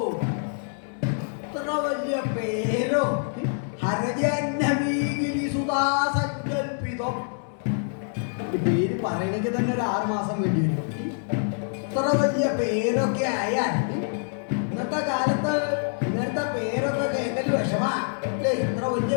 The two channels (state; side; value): silent; right; digital silence